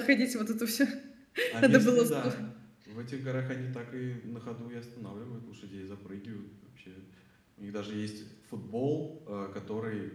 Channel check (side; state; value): both; identical; correlation 1.00